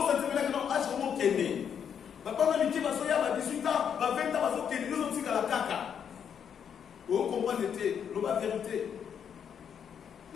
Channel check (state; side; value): quieter; right; 7.9 dB